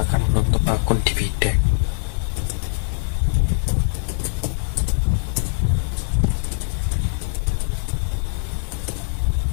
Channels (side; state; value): right; silent; 58 dB below the other